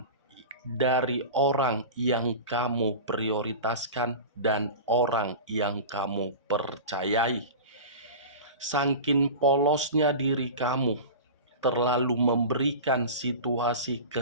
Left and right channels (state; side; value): inverted; both; correlation -0.31